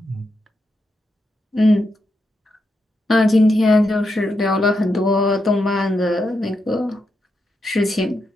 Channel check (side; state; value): both; normal; correlation 0.84